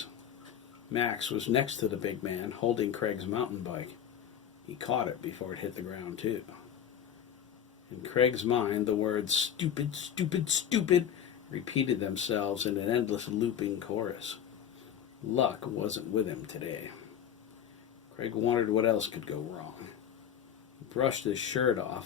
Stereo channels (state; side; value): quieter; right; 9.2 dB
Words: Max was next to the big man, holding Craig's mountain bike. He caught it before it hit the ground, too. In Craig's mind, the words "stupid, stupid, stupid" repeated themselves in an endless looping chorus. Luck wasn't with him today. Craig wondered what else could go wrong. He brushed his shirt